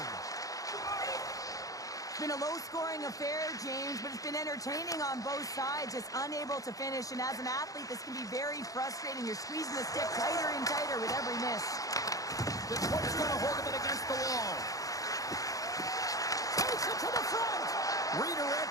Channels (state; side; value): late; right; 0.17 ms